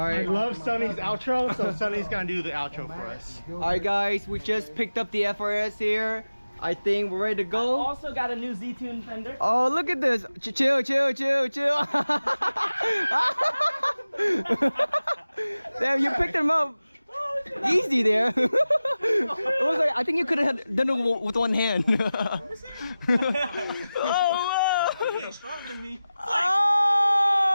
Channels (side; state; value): both; inverted; correlation -0.95